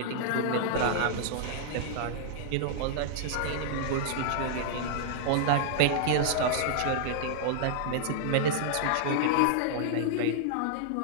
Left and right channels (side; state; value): both; different; correlation -0.01